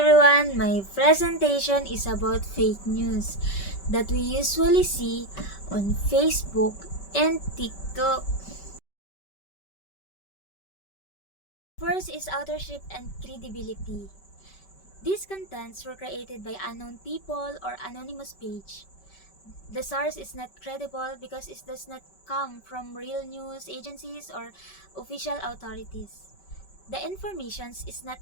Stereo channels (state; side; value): late; right; 5.2 ms